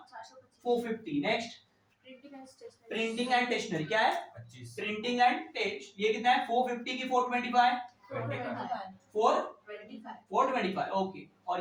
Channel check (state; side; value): identical; both; correlation 1.00